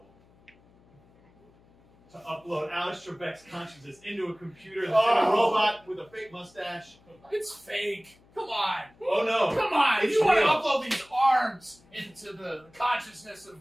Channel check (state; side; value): noise; left; hum, 29 dB below the sound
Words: to upload Alex Trebek's consciousness into a computer that's in a robot with a fake mustache. It's fake. Come on. Oh no. Come on. It's You want to real. upload these arms into the consciousness